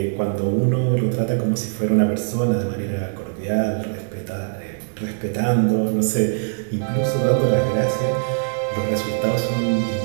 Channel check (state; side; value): silent; left; digital silence